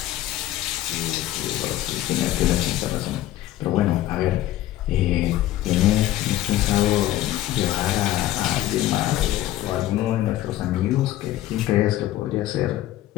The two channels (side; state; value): right; quieter; 14.4 dB